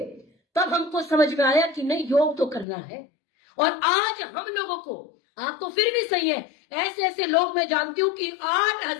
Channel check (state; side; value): drops out; right; at 2.7 s